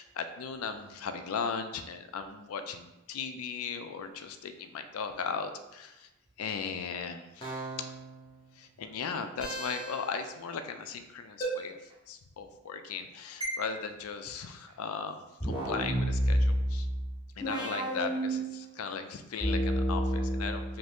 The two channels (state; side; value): normal; both; correlation 0.46